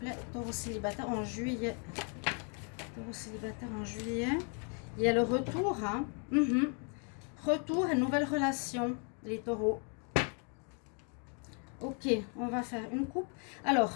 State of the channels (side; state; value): right; quieter; 39.4 dB